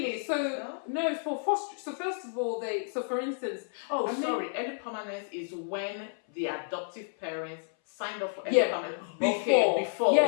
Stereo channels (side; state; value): right; silent; 57 dB below the other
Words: So no, for foster. So first of all, for instance, early permanence is when the adoptive parents signed up for early permanence before. Yeah.